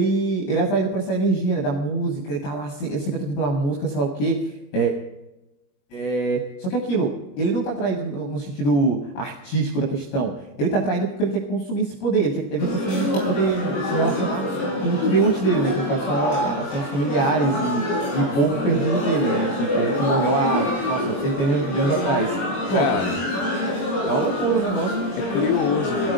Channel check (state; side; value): late; right; 21 ms